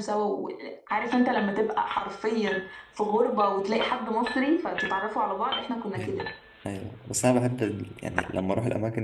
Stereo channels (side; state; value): both; identical; correlation 1.00